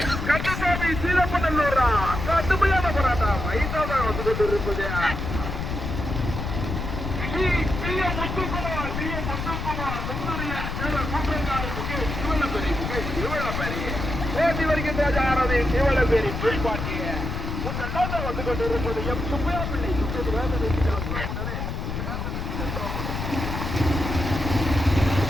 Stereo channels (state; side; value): noise; left; rumble, 4 dB below the sound